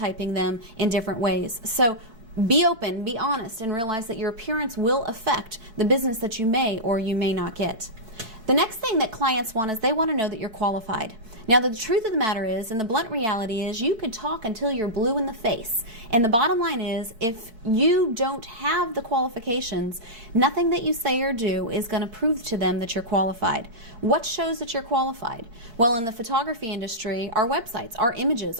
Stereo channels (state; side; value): late; left; 4.5 ms